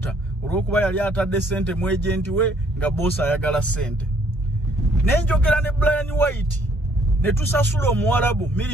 olw'okuba yali atadde sente mu ejenti we nga boosi ayagala sente. Ne njogera ne Brian White ne tusasula omuwalabu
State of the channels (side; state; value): both; normal; correlation 0.64